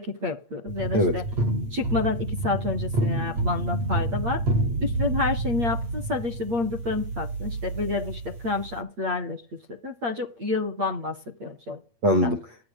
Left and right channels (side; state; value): left; late; 8.6 ms